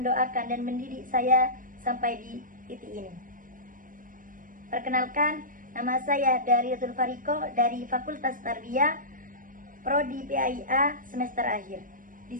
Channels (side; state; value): left; late; 0.40 ms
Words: dan mendidik saya sampai di titik ini. Perkenalkan, nama saya Dariatul Fariko dari Fakultas Tarbiyah Prodi PAIA semester akhir.